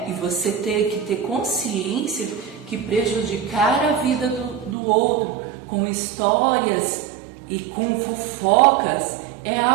E você tem que ter consciência que prejudicar a vida do outro com histórias e com fofocas é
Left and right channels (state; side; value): drops out; left; at 4.8 s